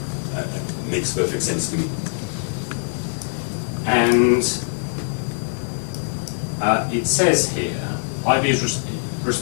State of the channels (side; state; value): right; silent; 64 dB below the other